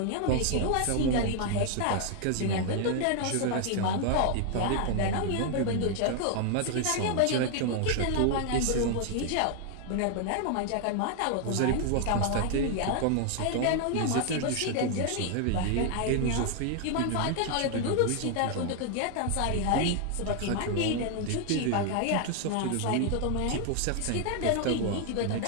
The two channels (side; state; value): both; different; correlation 0.00